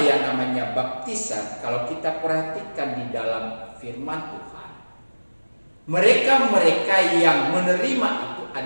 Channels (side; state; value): both; inverted; correlation -1.00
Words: yang namanya baptisan, kalau kita perhatikan di dalam firman Tuhan, mereka-mereka yang menerima itu